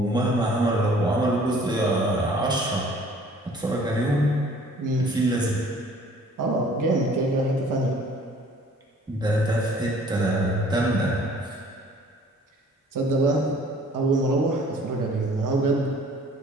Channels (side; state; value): both; normal; correlation 0.54